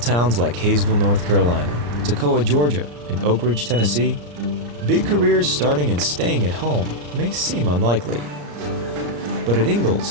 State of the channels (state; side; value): late; left; 34 ms